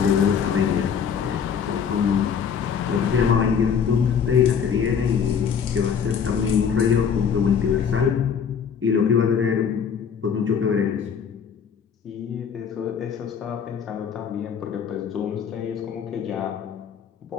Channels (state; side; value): quieter; right; 7.2 dB